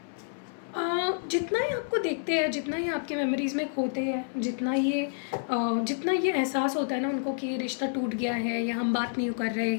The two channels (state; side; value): silent; right; 59 dB below the other